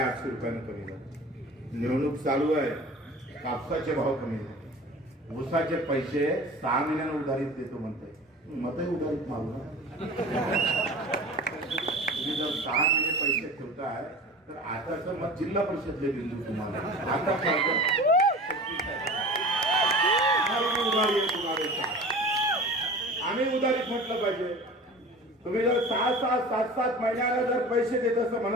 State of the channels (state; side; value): normal; both; correlation 0.38